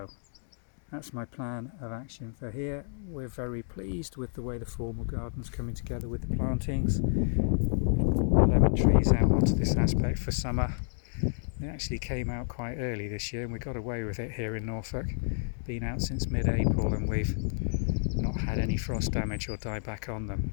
that's my plan of action for here. We're very pleased with the way the formal garden's coming together with the plantings. We've brought the lemon trees out onto this aspect for summer. They actually came out quite early this year, and we got away with it here in Norfolk. Been out since mid-April, and we've not had any frost damage or dieback on them.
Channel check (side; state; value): right; silent; digital silence